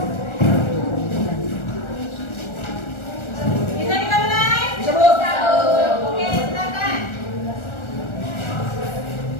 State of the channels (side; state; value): right; late; 1.4 ms